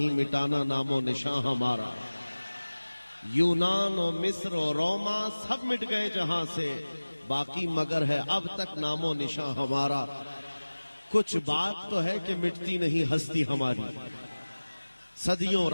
مٹانا نام و نشان ہمارا. یونان و مصر و روما سب مٹ گئے جہاں سے، باقی مگر ہے اب تک نام و نشان ہمارا. کچھ بات تو ہے کہ مٹتی نہیں ہستی ہماری، صدیوں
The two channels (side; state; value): both; inverted; correlation -1.00